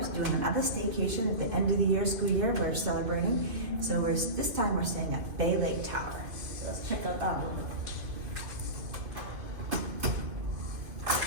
doing another staycation at the end of the year, school year. We're celebrating. So this time we're staying at Bay Lake Tower. So let's check out that one.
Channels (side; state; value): left; late; 2.5 ms